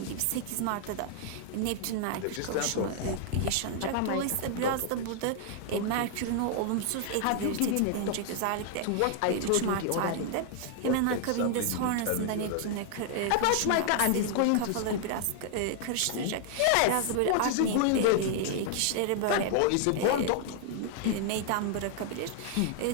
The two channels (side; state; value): both; different; correlation 0.00